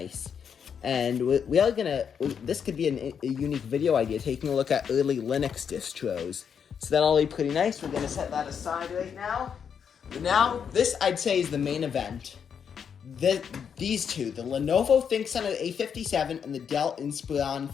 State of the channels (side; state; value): right; quieter; 7.3 dB